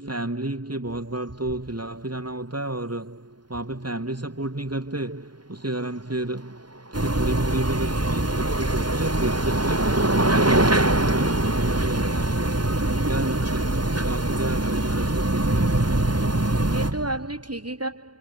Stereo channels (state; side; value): late; left; 0.71 ms